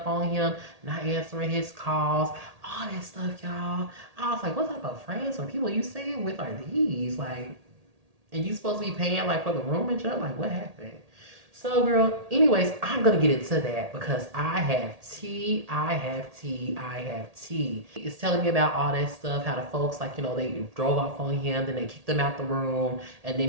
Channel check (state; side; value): late; left; 1.8 ms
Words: on him, not answering his calls, all that stuff, y'all. I was like, what type of friends or people you staying with are these? Like, and you supposed to be paying like for the room and stuff? Like, what happened? So, girl, anyways, I'm going to get into that because I have tea. It's telling me about all that stuff, how the folks, like, they drove off on him, then they kicked him out the room, and then